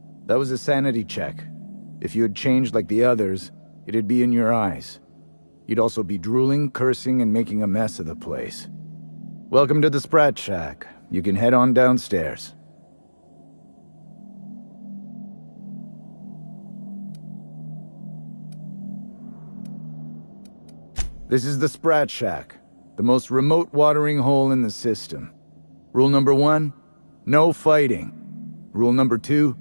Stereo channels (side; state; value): both; inverted; correlation -1.00